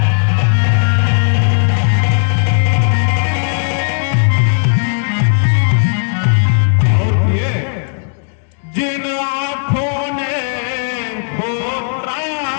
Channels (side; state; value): right; silent; digital silence